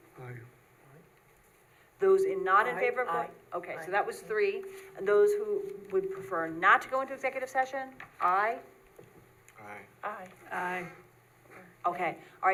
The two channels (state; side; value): identical; both; correlation 1.00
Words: Aye. Those not in Aye, favor of going? aye, Okay, so aye. that was 3. And those who would prefer not to go into executive session, aye? Aye. Aye. Aye. Okay, all